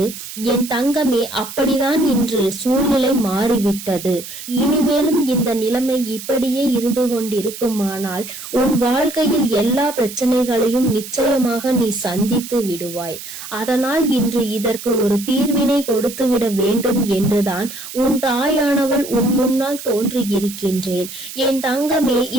என் தங்கமே, அப்படிதான் இன்று சூழ்நிலை மாறிவிட்டது. இனிமேலும் இந்த நிலைமை இப்படியே இருந்து கொண்டிருக்குமானால் உன் வாழ்க்கையில் எல்லா பிரச்சனைகளையும் நிச்சயமாக நீ சந்தித்து விடுவாய். அதனால் இன்று இதற்கு ஒரு தீர்வினை கொடுத்து விட வேண்டும் என்றுதான் உன் தாயானவள் உன் முன்னால் தோன்றி இருக்கின்றேன். என் தங்கமே,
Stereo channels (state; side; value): noise; right; hiss, 11 dB below the sound